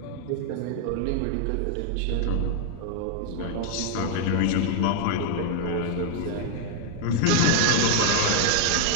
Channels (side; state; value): both; different; correlation 0.00